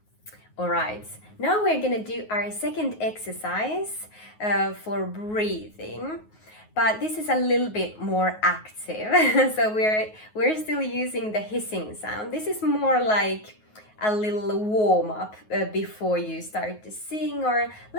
All right, now we're gonna do our second exercise for breathing, but this is a little bit more active. So we're still using the hissing sound. This is more like a little warm up before you start to sing, or a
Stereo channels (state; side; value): late; right; 9.4 ms